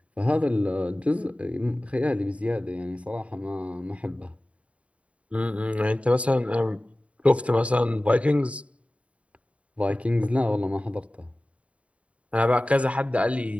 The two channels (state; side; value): late; left; 0.064 ms